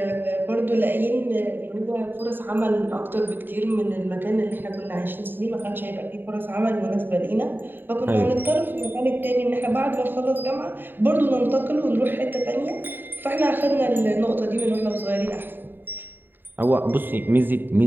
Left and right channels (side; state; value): left; late; 0.094 ms